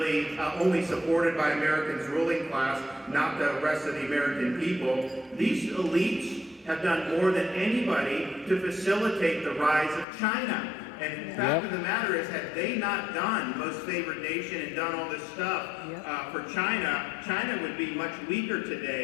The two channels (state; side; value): drops out; right; at 10.1 s